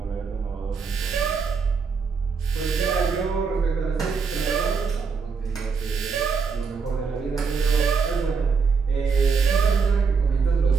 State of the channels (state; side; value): quieter; left; 5.3 dB